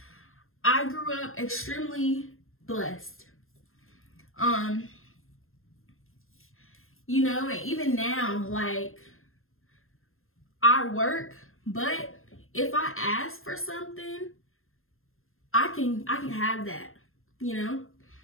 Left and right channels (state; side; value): late; right; 0.61 ms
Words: I grew up extremely blessed. And even now, like, I work, but if I ask for something, I can have that,